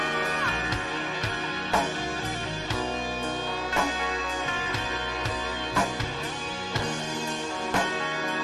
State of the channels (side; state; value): both; identical; correlation 1.00